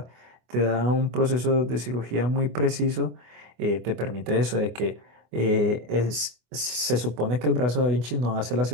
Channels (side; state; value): left; late; 24 ms